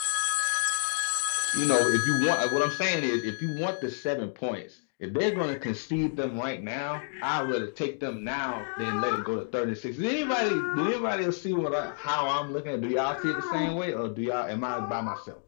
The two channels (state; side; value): silent; right; digital silence